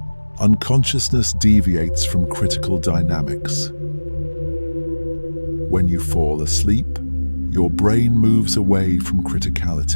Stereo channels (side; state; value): both; inverted; correlation -1.00